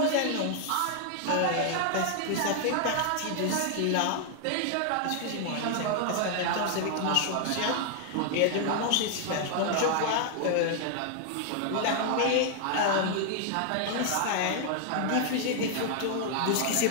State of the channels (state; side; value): different; both; correlation 0.00